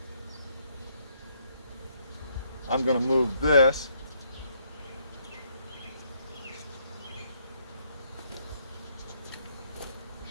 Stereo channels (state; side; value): inverted; both; correlation -0.71